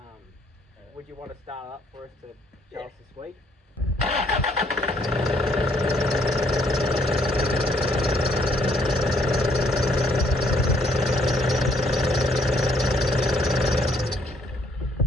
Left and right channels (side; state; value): both; normal; correlation 0.67